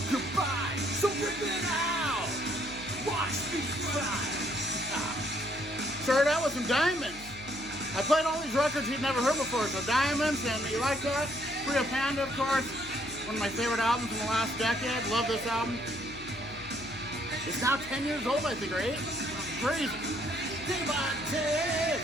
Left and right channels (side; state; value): left; noise; hum, 18 dB below the sound